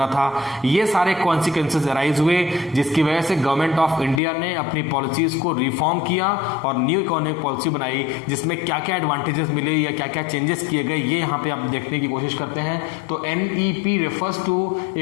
था, ये सारे कॉन्सिक्वेंसेस अराइज हुए, जिसकी वजह से गवर्नमेंट ऑफ इंडिया ने अपनी पॉलिसीज को रिफॉर्म किया और न्यू इकोनॉमिक पॉलिसी बनाई, जिसमें क्या क्या एडवांटेजेस मिले या क्या क्या चेंजेस किए गए, ये यहाँ पे आप देखने की कोशिश करते हैं। तो NEP refers to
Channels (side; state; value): right; drops out; at 4.2 s